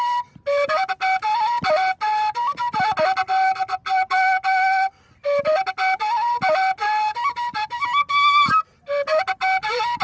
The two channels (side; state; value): both; identical; correlation 1.00